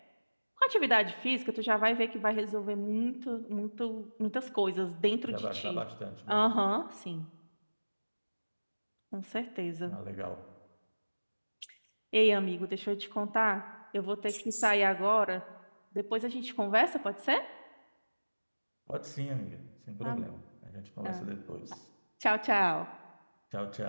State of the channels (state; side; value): inverted; both; correlation -1.00